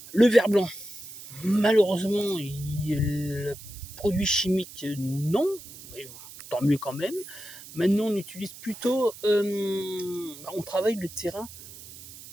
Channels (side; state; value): right; noise; hiss, 16 dB below the sound